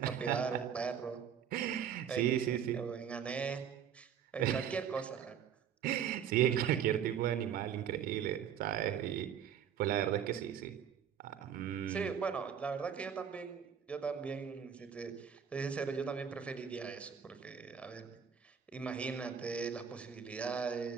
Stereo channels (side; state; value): left; quieter; 8.2 dB